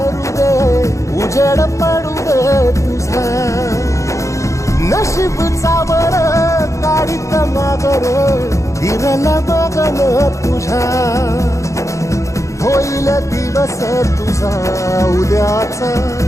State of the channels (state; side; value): late; right; 0.15 ms